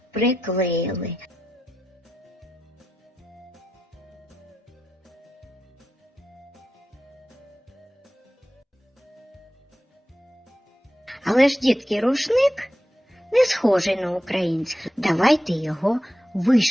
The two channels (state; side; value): normal; both; correlation 0.90